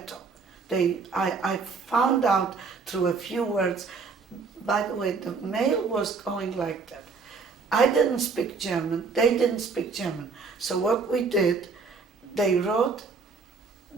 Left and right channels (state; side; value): quieter; left; 4.7 dB